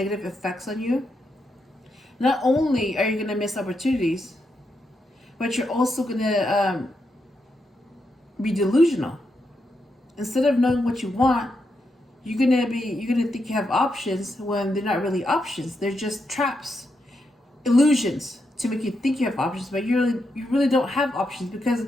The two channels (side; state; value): both; normal; correlation 0.83